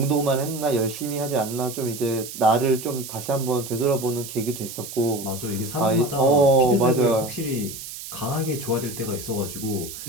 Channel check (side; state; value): right; noise; hiss, 11 dB below the sound